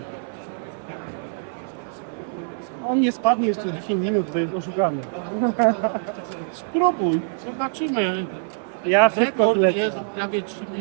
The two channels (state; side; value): silent; left; 58 dB below the other